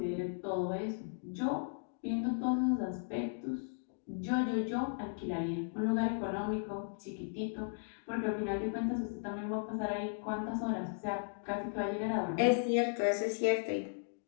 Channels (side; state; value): right; silent; digital silence